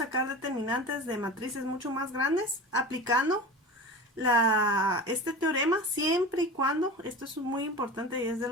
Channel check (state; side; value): normal; both; correlation 0.31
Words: determinantes de matrices mucho más grandes aplicando este teorema siempre y cuando, esto es muy importante y es de